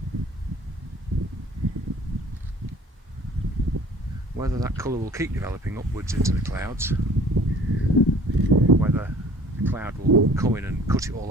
whether that colour will keep developing upwards into the clouds, whether the cloud will come in and cut it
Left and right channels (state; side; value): normal; both; correlation 0.50